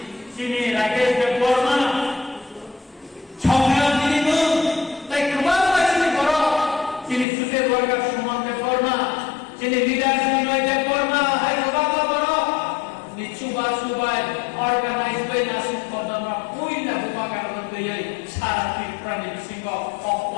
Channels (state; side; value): drops out; right; at 7.2 s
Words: চিনি রাকেশ দেববর্মা সংগ্রাম তিনি তাই গোবাং বাসী বড় চিনি সুদের বর্গা সুমন দেববর্মা চিনি লিডার বিনয় দেববর্মা হাই গোবাং বড় নিচুবা সুবাই অর্গানাইজ বাই নাসিক কদমা কইলা গোবাং কারণ তৈরি সারা ত্রিপুরানি সিংহ